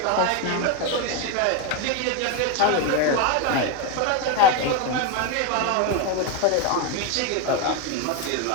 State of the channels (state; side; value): different; both; correlation 0.02